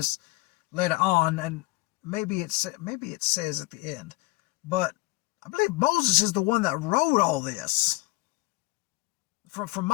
later on, and maybe it says at the end, but I believe Moses is the one that wrote all this. From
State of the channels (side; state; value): right; quieter; 22.5 dB